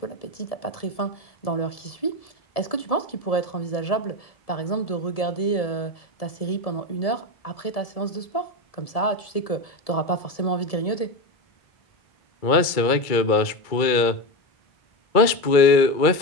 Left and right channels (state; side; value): late; right; 2.2 ms